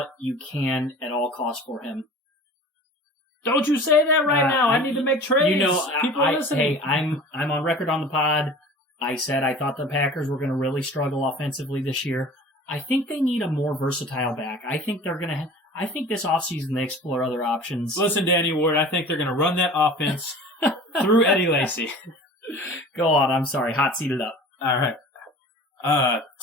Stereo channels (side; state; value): both; normal; correlation 0.41